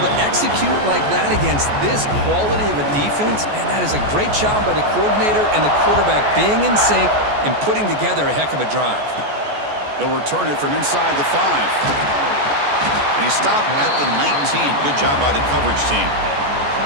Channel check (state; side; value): late; left; 14 ms